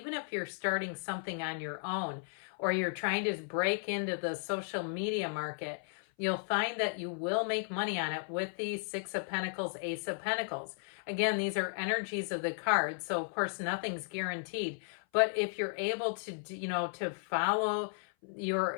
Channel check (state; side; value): silent; right; 55 dB below the other